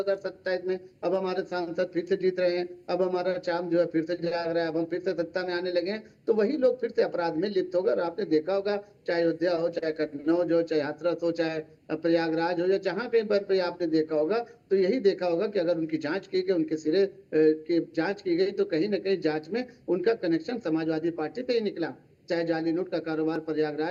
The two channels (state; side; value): identical; both; correlation 1.00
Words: में, अब हमारे सांसद फिर से जीत रहे हैं, अब हमारा चाम जो है फिर से जाग रहा है, अब हम फिर से सत्ता में आने लगे हैं, तो वही लोग फिर से अपराध में लिप्त होगा। और आपने देखा होगा, चाहे अयोध्या हो, चाहे कन्नौज हो, चाहे हाथरस हो, चाहे प्रयागराज हो, या जहां कहीं पर आपने देखा होगा, तो यही देखा होगा कि अगर उनकी जांच की गई, उनके सिरे की जांच की गई, तो कहीं ना कहीं जांच में उनका कनेक्शन समाजवादी पार्टी पे ही निकला। चाहे जाली नोट का कारोबार